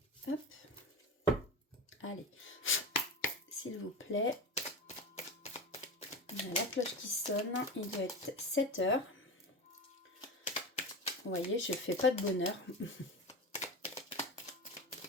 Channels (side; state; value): both; normal; correlation 0.25